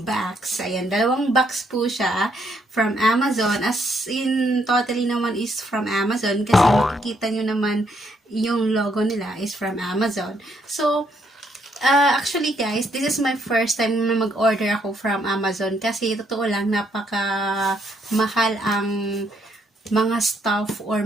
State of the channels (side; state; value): both; normal; correlation 0.72